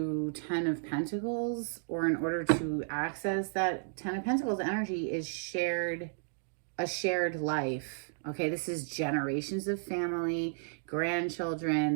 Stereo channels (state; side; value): silent; left; digital silence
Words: 10 of Pentacles, or in order to access that 10 of Pentacles energy is a shared life. Okay, this is generations of family,